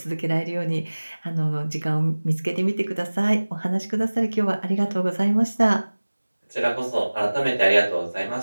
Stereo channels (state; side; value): inverted; both; correlation -1.00